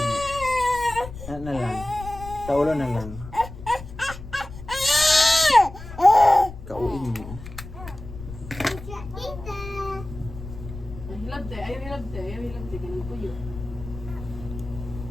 Na lang. Sa ulo na lang. Kauin mo. Hilabte, ayaw hilabte. Ganun po yun.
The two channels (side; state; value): left; noise; rumble, 13 dB below the sound